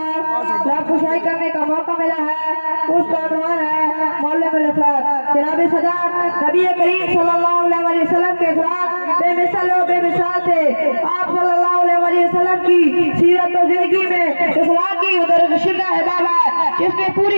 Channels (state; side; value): inverted; both; correlation -1.00